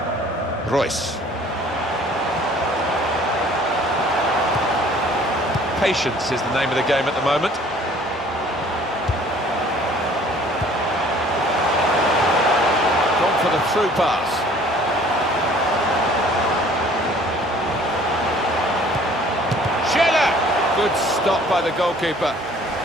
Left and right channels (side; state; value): both; normal; correlation 0.53